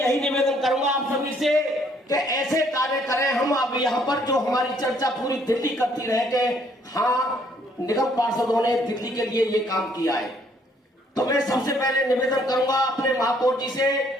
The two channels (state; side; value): normal; both; correlation 0.65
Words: निवेदन करूंगा आप सभी से कि ऐसे कार्य करें। हम अब यहाँ पर जो हमारी चर्चा पूरी दिल्ली करती रहे कि हाँ निगम पार्षदों ने दिल्ली के लिए ये काम किया है, तो मैं सबसे पहले निवेदन करूंगा अपने महापौर जी से